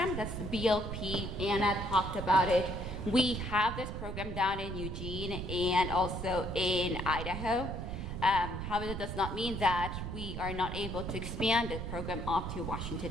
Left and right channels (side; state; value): right; noise; rumble, 5 dB below the sound